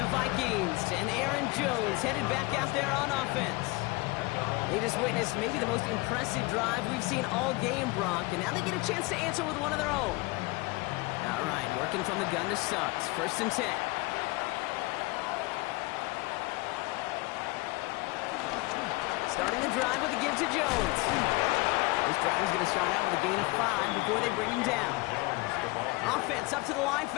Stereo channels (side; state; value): right; quieter; 23.2 dB